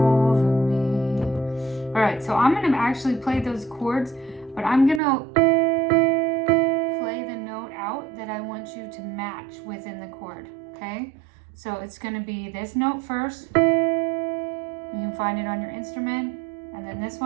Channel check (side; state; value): left; drops out; at 5.0 s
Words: me. All right, so I'm gonna actually play those chords, but I'm gonna play the note out that I want you to match within the chord, okay? So it's gonna be this note first. You can find it on your instrument, and then this